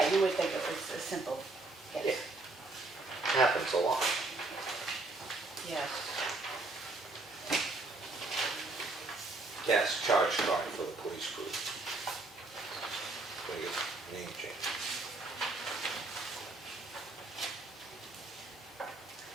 you would think it was a simple yes. happens a lot. Yes. Gas charge card for the police crew. Biggest name change.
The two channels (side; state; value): left; quieter; 3.2 dB